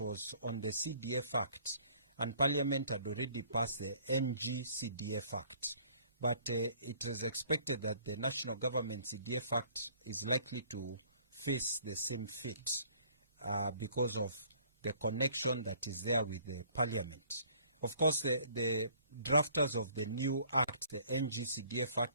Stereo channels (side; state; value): both; inverted; correlation -0.57